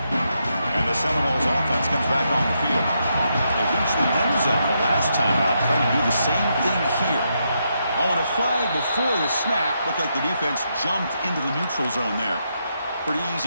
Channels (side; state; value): both; inverted; correlation -0.81